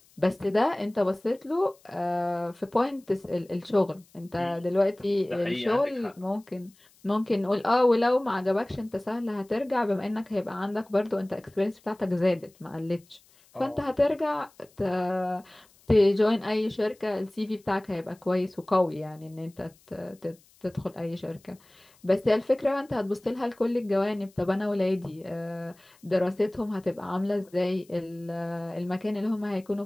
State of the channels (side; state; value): left; noise; hiss, 30 dB below the sound